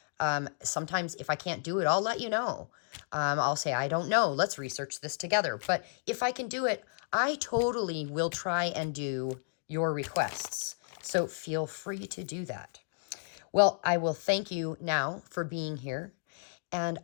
Sometimes if I can't do it, I'll let you know. I'll say, I don't know, let's research this together. But if I can do it, I totally will try and do your requests. So feel free to do that. Well, I will thank you now for being here, and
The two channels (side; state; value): right; silent; digital silence